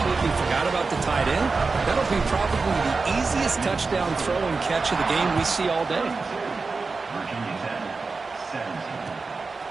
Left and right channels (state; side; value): quieter; left; 4.2 dB